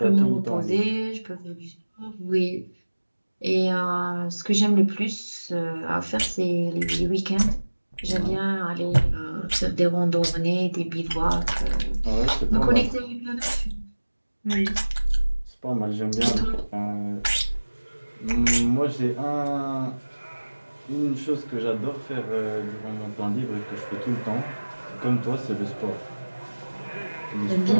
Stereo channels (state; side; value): inverted; both; correlation -1.00